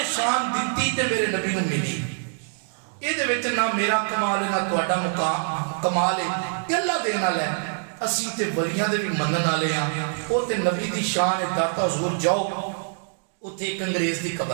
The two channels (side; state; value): left; silent; digital silence